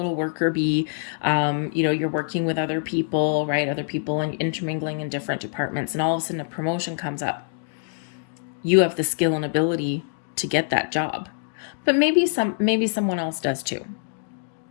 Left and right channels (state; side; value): silent; right; digital silence